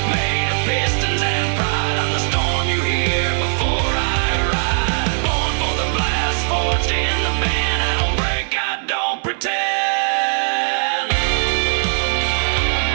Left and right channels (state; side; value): silent; left; digital silence